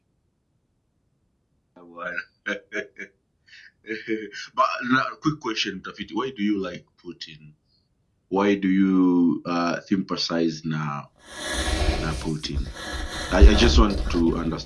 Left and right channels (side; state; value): both; identical; correlation 1.00